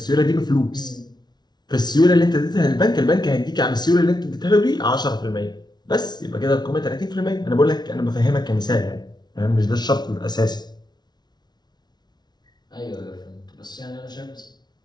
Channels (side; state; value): right; late; 0.20 ms